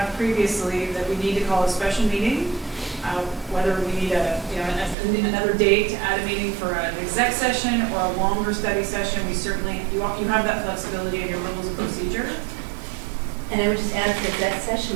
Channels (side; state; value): left; drops out; at 5.0 s